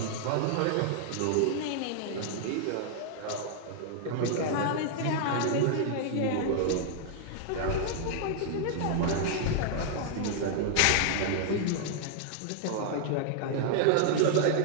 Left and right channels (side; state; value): both; different; correlation -0.01